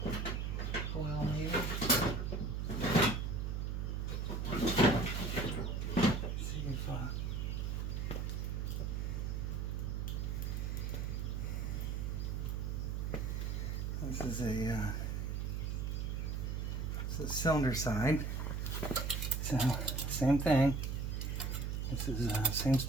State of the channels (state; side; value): noise; right; hum, 1 dB below the sound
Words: Coil maybe. See if this is a cylinder side. So same thing. This is same